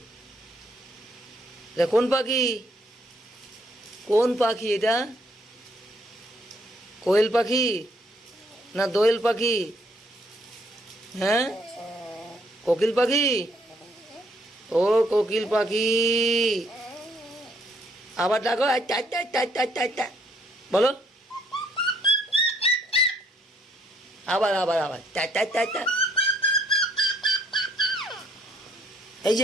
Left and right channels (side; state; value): both; normal; correlation 0.68